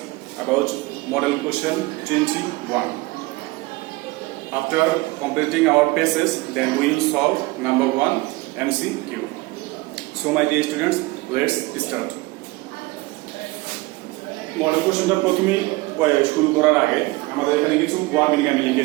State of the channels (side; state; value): left; quieter; 22.0 dB